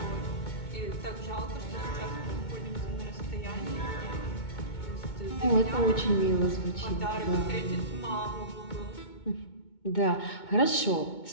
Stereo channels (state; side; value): late; right; 2.2 ms